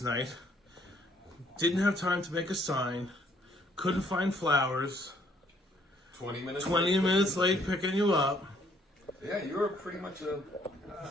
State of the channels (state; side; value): normal; both; correlation 0.65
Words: night. Didn't have time to make a sign. Couldn't find flowers. 20 minutes. 20 minutes late picking you up. Yeah, you were pretty much a